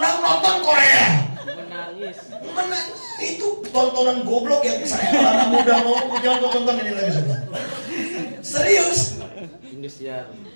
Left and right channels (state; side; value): inverted; both; correlation -1.00